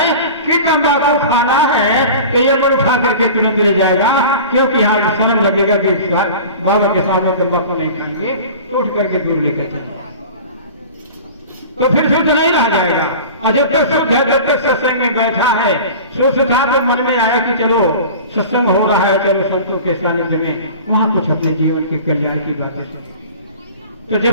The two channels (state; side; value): inverted; both; correlation -0.38